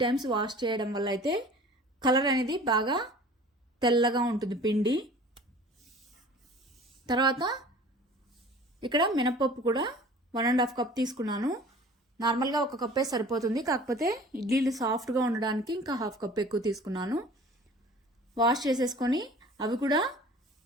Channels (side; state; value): both; normal; correlation 0.45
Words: టైమ్స్ వాష్ చేయడం వల్ల అయితే కలర్ అనేది బాగా తెల్లగా ఉంటుంది పిండి. తర్వాత ఇక్కడ మినపప్పు కూడా 1.5 కప్ తీసుకున్నాను. నార్మల్గా 1 కప్పే సరిపోతుంది, కాకపోతే ఇడ్లీలు సాఫ్ట్గా ఉండడానికి ఇంకా 1/2 కప్ ఎక్కువ తీసుకున్నాను. వాష్ చేసేసుకొని అవి కూడా